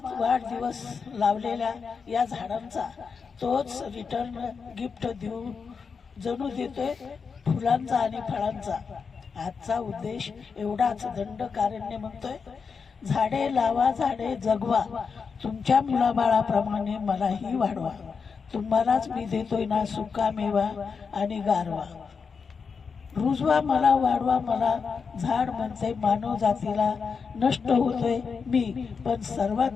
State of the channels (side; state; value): right; quieter; 5.6 dB